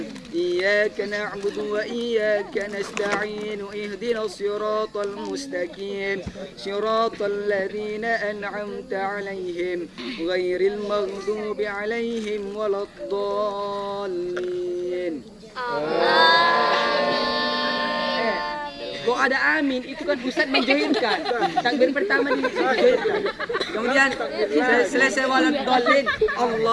إياك نعبد وإياك نستعين اهدنا الصراط المستقيم صراط الذين أنعمت عليهم غير المغضوب عليهم ولا الضالين. Kok ada amin, itu kan Ustaz menjoinkan. Takbir pertama dijoinkan. Kemudian selesai walad dhalin,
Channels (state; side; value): identical; both; correlation 1.00